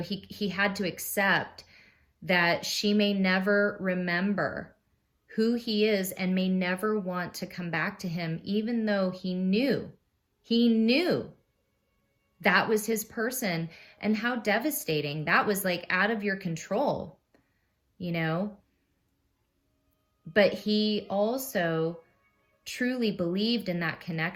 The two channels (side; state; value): both; identical; correlation 1.00